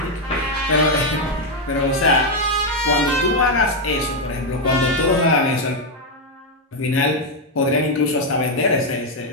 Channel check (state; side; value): normal; both; correlation 0.03